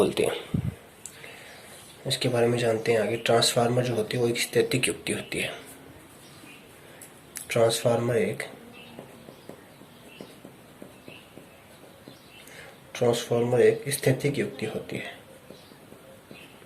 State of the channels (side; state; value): both; identical; correlation 1.00